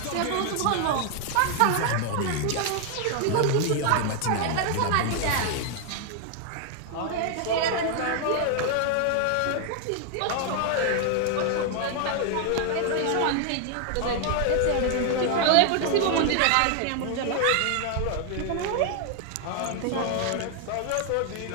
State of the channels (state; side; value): different; both; correlation 0.00